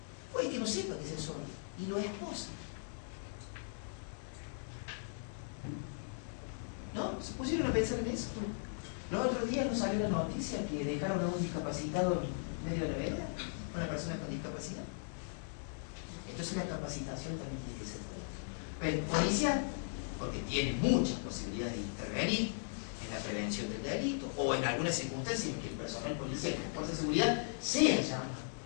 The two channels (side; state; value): right; silent; digital silence